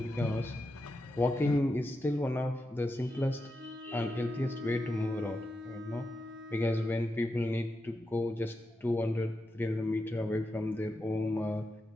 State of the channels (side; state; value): both; normal; correlation 0.87